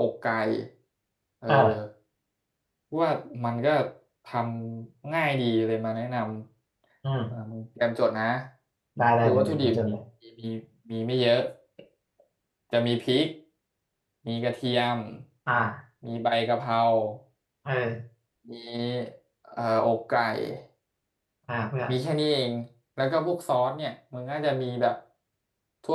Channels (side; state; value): both; identical; correlation 1.00